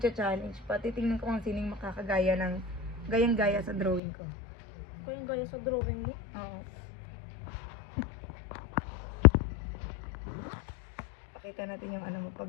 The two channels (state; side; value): drops out; right; at 4.0 s